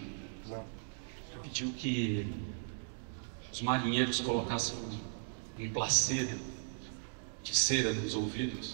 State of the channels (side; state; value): left; silent; digital silence